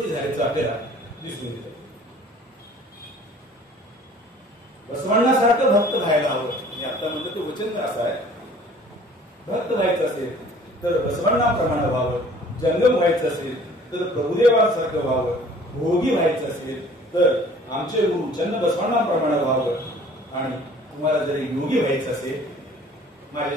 झाल्याचं आपल्याला दिसून येतं. बसवण्णासारखं भक्त व्हायला हवं. मी आता म्हणलं ते वचन असं आहे, भक्त व्हायचं असेल तर बसवण्णाप्रमाणे व्हावं, जंगम व्हायचं असेल तर प्रभुदेवासारखं व्हावं, भोगी व्हायचं असेल तर आमचे गुरु चन्न बसवण्णाप्रमाणे व्हावं, आणि तुम्हाला जरी योगी व्हायचं असेल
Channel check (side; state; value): both; normal; correlation 0.52